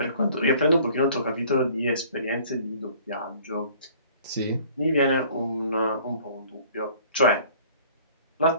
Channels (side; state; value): both; inverted; correlation -0.52